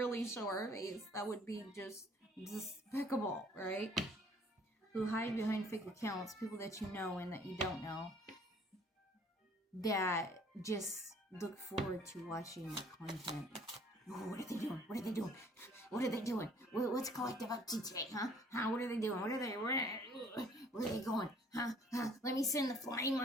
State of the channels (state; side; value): normal; both; correlation 0.57